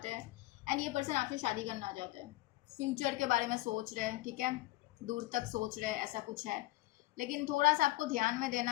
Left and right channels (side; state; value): right; quieter; 17.9 dB